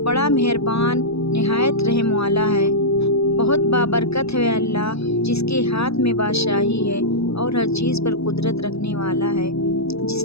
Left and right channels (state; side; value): late; right; 0.78 ms